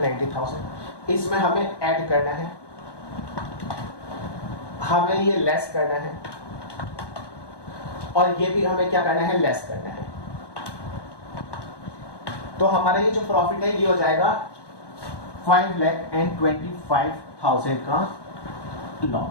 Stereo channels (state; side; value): late; right; 1.2 ms